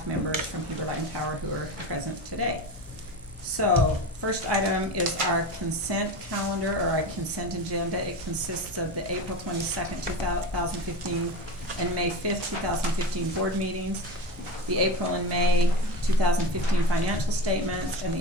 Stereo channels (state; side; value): normal; both; correlation 0.25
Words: members from Heber Light and Power who are present today. So, first item is our consent calendar, or our consent agenda. It consists of the April 22nd, 2015 and May 5th, 2015 board meetings, the April and May 2015 financial statements, and